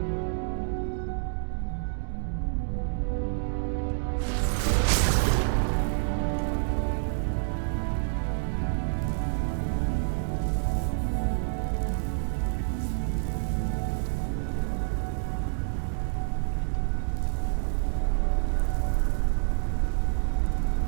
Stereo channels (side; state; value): left; silent; digital silence